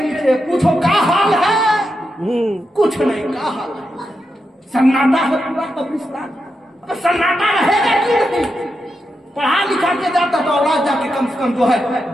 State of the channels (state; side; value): normal; both; correlation 0.86